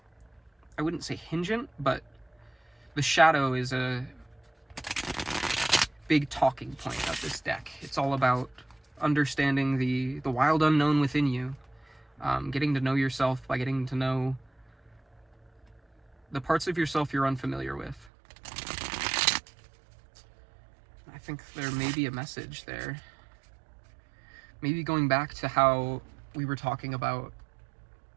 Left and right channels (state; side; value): drops out; left; at 18.1 s